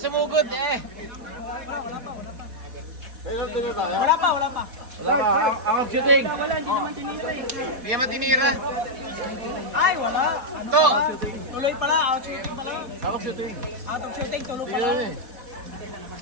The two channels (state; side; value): late; left; 4.1 ms